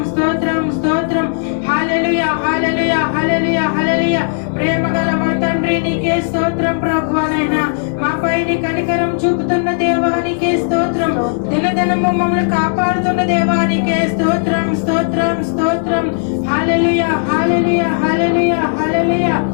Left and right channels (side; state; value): right; silent; digital silence